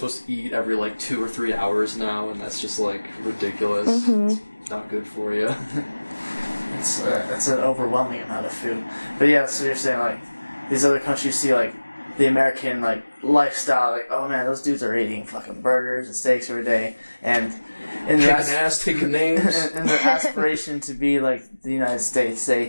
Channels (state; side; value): inverted; both; correlation -1.00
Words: to eat every, like, 2 or 3 hours now, and that's just, like, ridiculous. Mm-hmm. It's not good for you. It's an overwhelming amount of food. But yeah, so you're saying, like, these other countries see, like, the American, like, lifestyle, like, oh man, those dudes are eating fucking burgers and steaks every day, and in taking names, and their aspiration to be like the United States,